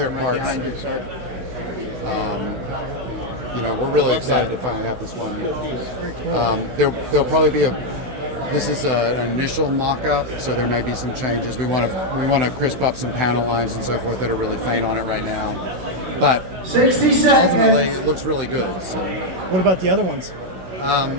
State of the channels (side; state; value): left; late; 16 ms